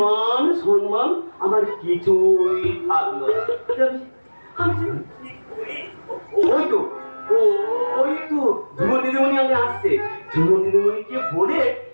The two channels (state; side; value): inverted; both; correlation -1.00